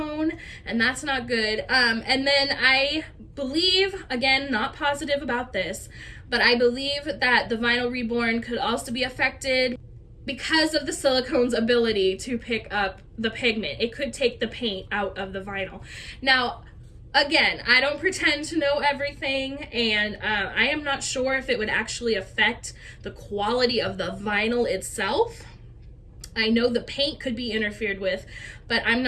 and that's not good. And then I believe, again, not positive about this, but I believe that the vinyl reborn could also be affected because of the silicone's ability to pick up the pigment. It could take the paint out of the vinyl. Now, again, I don't pretend to know everything, and I am not sure if it would actually affect the quality of the vinyl itself. I know the paint could be interfered with, but I'm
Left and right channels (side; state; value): both; identical; correlation 1.00